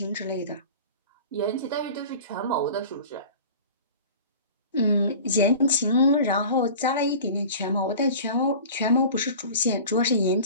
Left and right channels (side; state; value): both; inverted; correlation -0.39